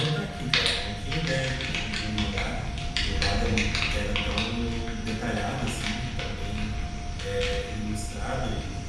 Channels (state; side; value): identical; both; correlation 1.00